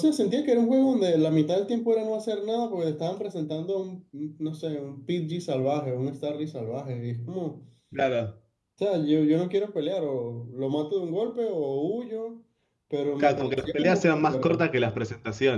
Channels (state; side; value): identical; both; correlation 1.00